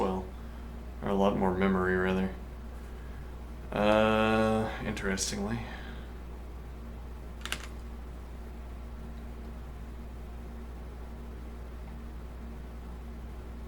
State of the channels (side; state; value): both; identical; correlation 1.00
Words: Or a lot more memory, rather. Interestingly.